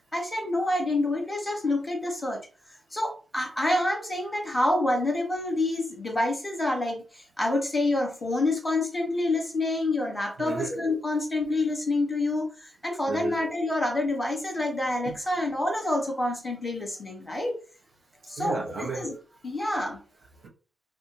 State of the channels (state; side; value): normal; both; correlation 0.85